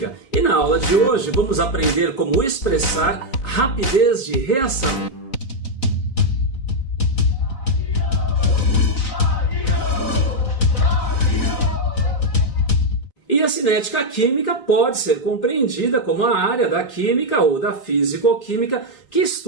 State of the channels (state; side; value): late; right; 3.6 ms